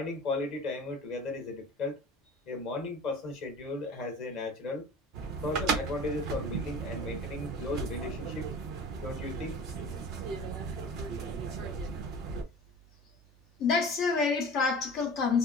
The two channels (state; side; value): normal; both; correlation 0.39